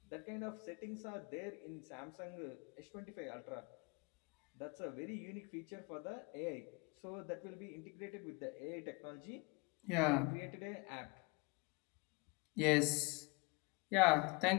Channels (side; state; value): right; quieter; 28.7 dB